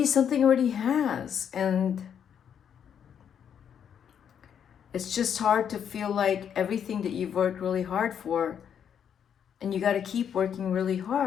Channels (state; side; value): quieter; right; 8.4 dB